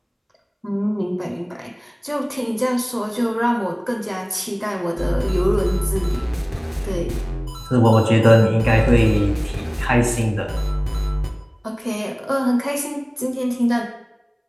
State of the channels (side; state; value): both; identical; correlation 1.00